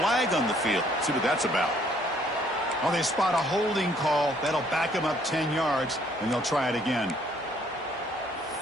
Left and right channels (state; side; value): normal; both; correlation 0.64